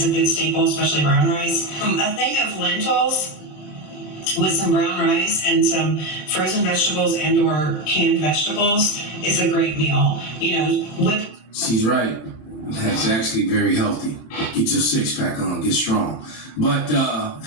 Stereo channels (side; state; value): right; late; 26 ms